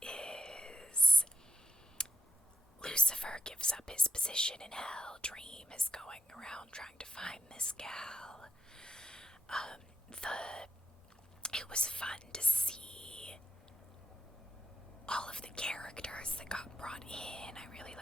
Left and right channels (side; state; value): both; normal; correlation 0.86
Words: is... Lucifer gives up his position in hell. Dream is going around trying to find this gal. It was fun to see all of the characters that got brought in. I really